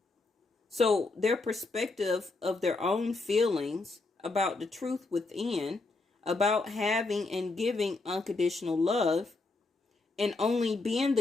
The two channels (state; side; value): quieter; right; 3.4 dB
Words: So their perspective of their own feelings about the truth within, about having and giving unconditional love, and only being